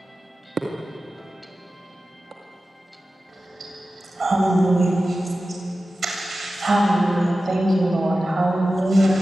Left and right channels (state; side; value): normal; both; correlation 0.94